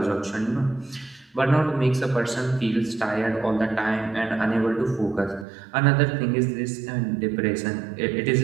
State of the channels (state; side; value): drops out; left; at 5.5 s